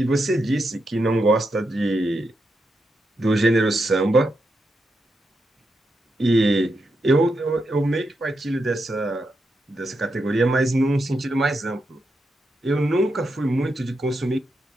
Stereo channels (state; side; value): normal; both; correlation 0.84